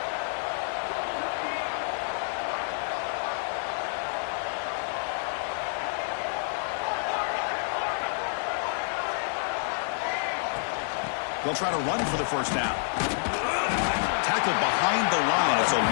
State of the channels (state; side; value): silent; right; digital silence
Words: They'll try to run for the first down. Tackled behind the line. It's a